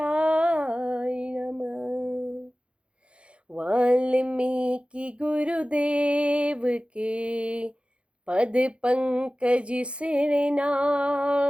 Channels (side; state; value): left; late; 0.059 ms